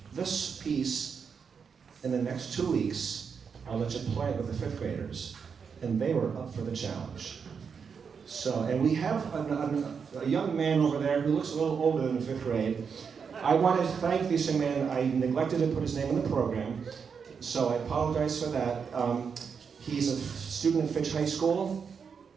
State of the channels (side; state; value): left; quieter; 6.2 dB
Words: this piece in the next 2 weeks, I'll let you play it with the 5th graders. And they were up for the challenge. So, and we have a young man over there who looks a little older than 5th grade. I want to thank this young man. I neglected to put his name in the program, so I apologize for that. He's a student at Fitch High School.